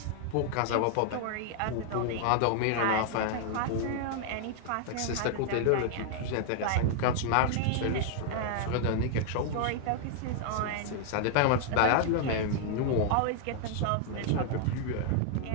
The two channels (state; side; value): different; both; correlation 0.00